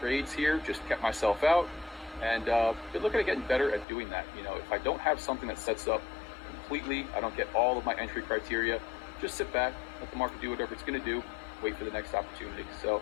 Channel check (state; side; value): drops out; right; at 3.9 s